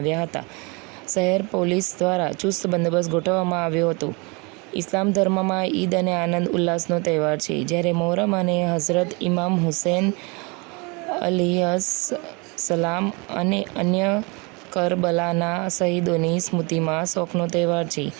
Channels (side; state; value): left; quieter; 29.4 dB